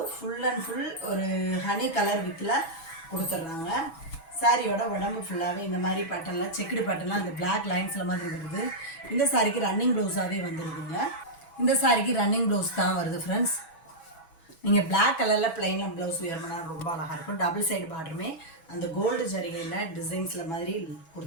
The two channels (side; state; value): right; late; 6.1 ms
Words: ஃபுல் அண்ட் ஃபுல் ஒரு ஹனி கலர் வித்தில் கொடுத்துட்றாங்க. சாரியோட உடம்பு ஃபுல்லாகவே இந்த மாதிரி பேட்டர்னில் செக்குடு பேட்டர்னில் அந்த பிளாக் லைன்ஸில் மாதிரி வருது. இந்த சாரிக்கு ரன்னிங் ப்ளவுஸாகவே வந்துருக்குங்க. இந்த சாரிக்கு ரன்னிங் ப்ளவுஸ் தான் வருது ஃப்ரெண்ட்ஸ். நீங்கள் பிளாக் கலரில் ப்ளைனில் ப்ளவுஸ் வியர் பண்ணால் ரொம்ப அழகாக இருக்கும். டபுள் சைடு பார்டருமே அந்த கோல்டு ஜரிகையில் டிசைன்ஸில் மாதிரி